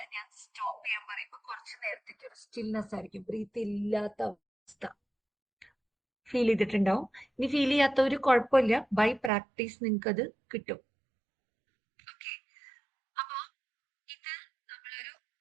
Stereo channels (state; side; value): drops out; left; at 9.3 s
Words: ഞാൻ സ്റ്റോപ്പ് ചെയ്യാൻ പറയുമ്പോൾ കുറച്ച് നേരത്തേക്ക് ഒരു സ്റ്റിൽനെസ് ആയിരിക്കും, ബ്രീത്ത് ഇല്ലാത്ത അവസ്ഥ ഫീൽ ചെയ്തിട്ടുണ്ടാവും. ഇനി ഫീൽ ചെയ്യാത്ത ഒരു കുഴപ്പമില്ല, ബൈ പ്രാക്ടീസ് നിങ്ങൾക്ക് അത് കിട്ടും. ഓക്കെ, അപ്പൊ ഇത് നമ്മളൊരു